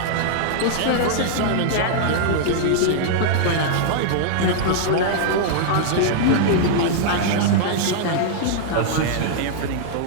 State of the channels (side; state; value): both; different; correlation -0.01